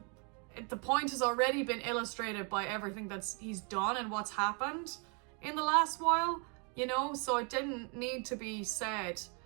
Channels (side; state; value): left; quieter; 36.1 dB